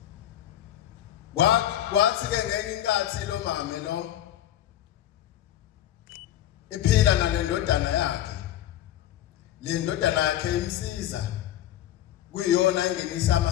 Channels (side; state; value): right; quieter; 12.1 dB